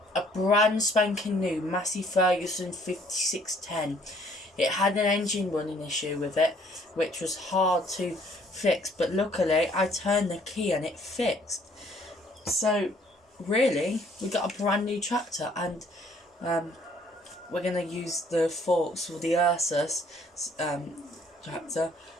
A brand spanking new Massey Ferguson 5610. It had an engine running issue with it, which was hard to fix, but luckily I turned the key and it fixed. So really, we got a brand new tractor, and we're going to use the forks for the Ursus tractor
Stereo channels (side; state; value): both; normal; correlation 0.61